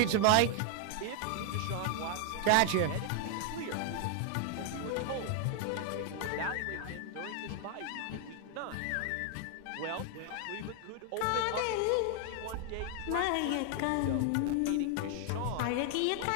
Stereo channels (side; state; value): both; different; correlation 0.00